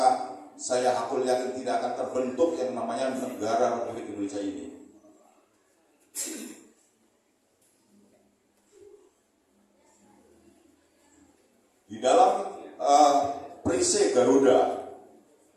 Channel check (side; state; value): both; identical; correlation 1.00